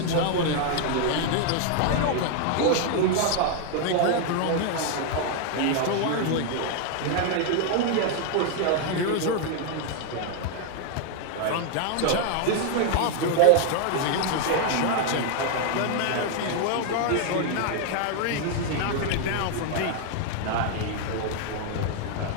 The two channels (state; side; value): different; both; correlation 0.00